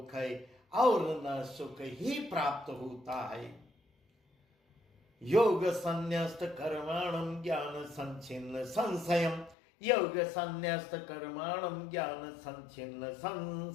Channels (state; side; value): drops out; right; at 9.6 s